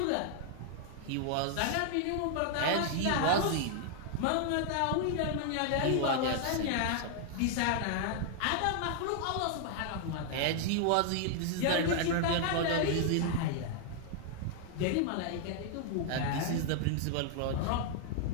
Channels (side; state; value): both; different; correlation 0.00